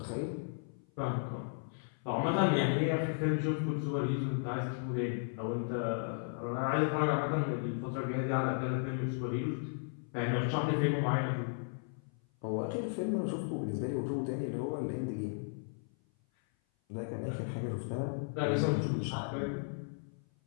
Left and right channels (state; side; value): silent; right; 54 dB below the other